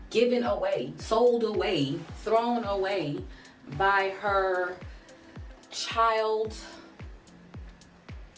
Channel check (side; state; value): both; identical; correlation 1.00